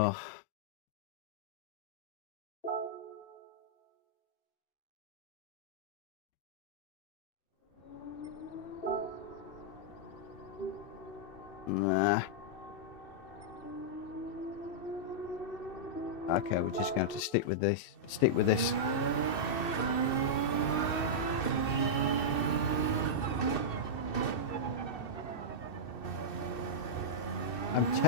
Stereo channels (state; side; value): late; right; 2.6 ms